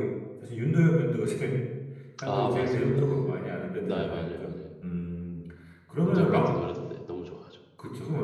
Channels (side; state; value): both; identical; correlation 1.00